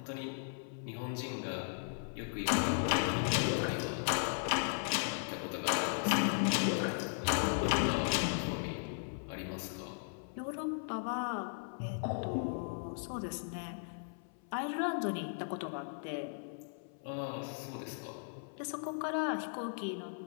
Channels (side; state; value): right; silent; 53 dB below the other